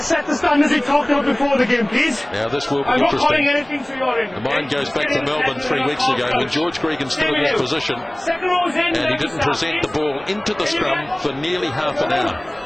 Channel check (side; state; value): right; noise; rumble, 26 dB below the sound